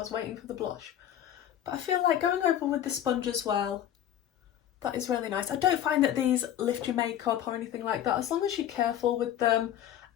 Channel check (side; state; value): right; quieter; 10.9 dB